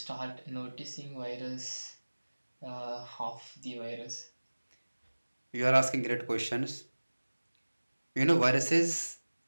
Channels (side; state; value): both; inverted; correlation -1.00